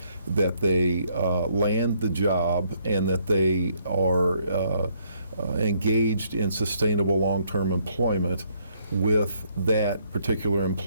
that they land the job, and that they are engaged in sustainable long-term employment with that particular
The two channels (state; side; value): inverted; both; correlation -0.70